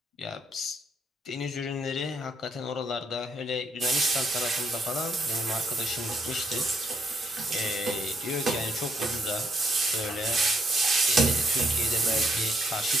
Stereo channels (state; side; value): normal; both; correlation 0.73